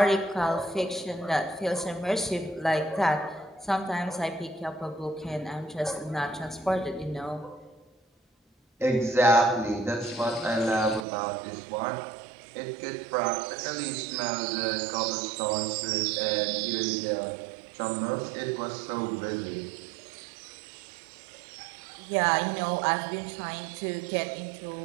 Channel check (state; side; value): drops out; left; at 11.1 s